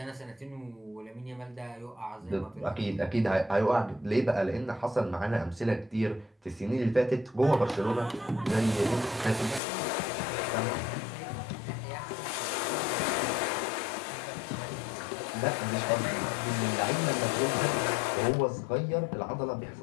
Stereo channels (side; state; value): right; drops out; at 9.6 s